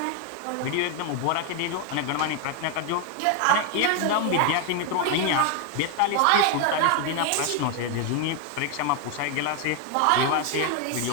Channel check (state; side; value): different; both; correlation 0.01